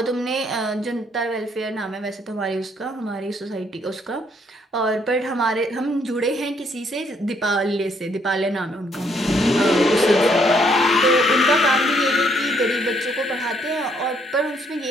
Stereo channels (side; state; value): both; normal; correlation 0.69